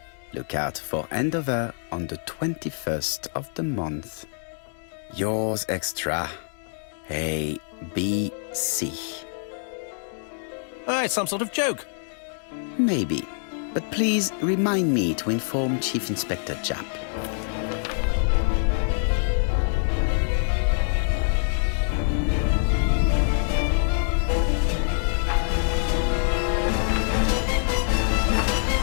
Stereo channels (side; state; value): right; silent; 62 dB below the other